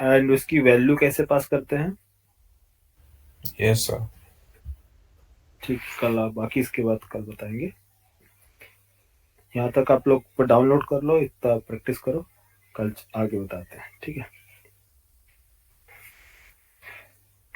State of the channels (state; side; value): identical; both; correlation 1.00